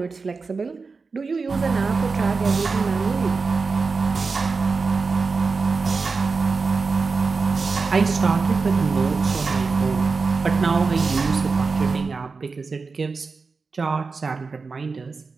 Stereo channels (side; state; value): left; quieter; 4.4 dB